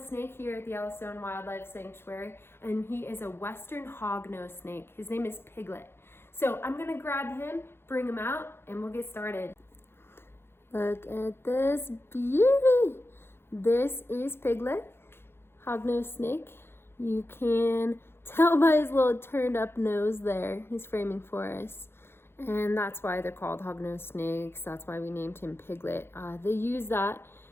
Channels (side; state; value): right; late; 0.11 ms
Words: here at the Yellowstone Wildlife Sanctuary, and he is a western hognose snake. His name is Piglet. So I'm gonna grab him, bring him out, and we'll get started. Look at this beauty. This is Piglet, hognose snake. You can tell by his little turned up nose there. He's framing for us. And that's why they're called hognose snakes. That's why we named him Piglet. They use that